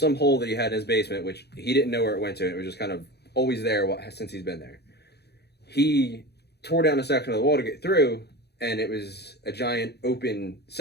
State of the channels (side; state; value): right; late; 0.48 ms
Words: hole that he had in his basement, which he didn't know where it went to. It was just kind of always there since he's been there. He tore down a section of the wall to get through, and it was a giant open